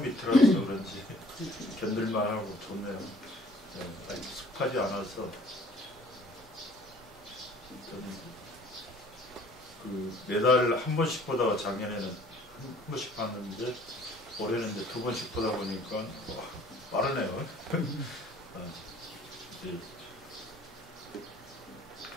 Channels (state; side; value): normal; both; correlation 0.54